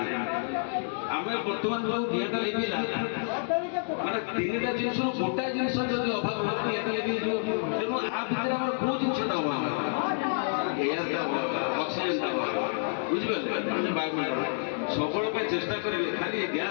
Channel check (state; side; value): silent; right; digital silence